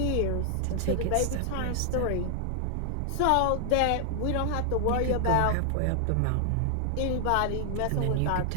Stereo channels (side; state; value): both; different; correlation 0.00